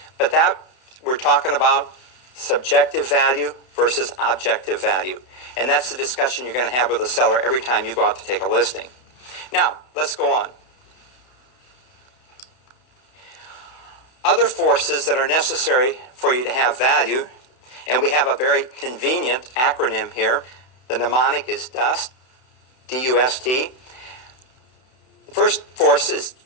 But that, we're talking about subjective value versus objective value. And that's the discussion you're going to have with a seller every time you go out to take a listing. Now, let's go on. Other forces that are necessary for you to have value, and we have a very convenient acronym here. The mnemonic is DUST, D-U-S-T. The first force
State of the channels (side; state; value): right; late; 32 ms